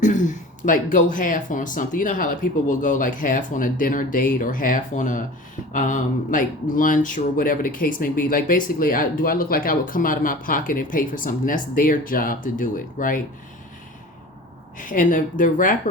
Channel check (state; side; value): normal; both; correlation 0.38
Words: like go half on something. You know how like people will go like half on a dinner date or half on a like lunch or whatever the case may be. Like basically, do I look like I would come out of my pocket and pay for something? That's their job to do it, right? And the